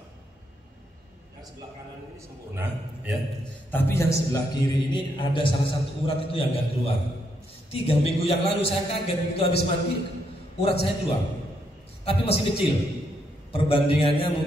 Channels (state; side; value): normal; both; correlation 0.77